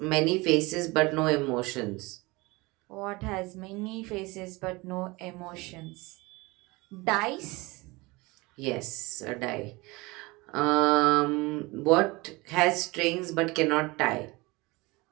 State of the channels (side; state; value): left; quieter; 23.6 dB